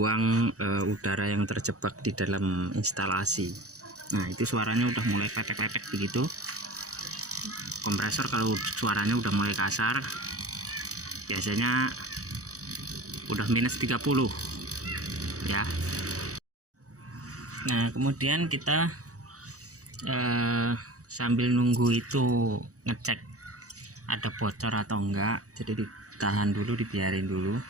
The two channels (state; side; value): late; left; 0.66 ms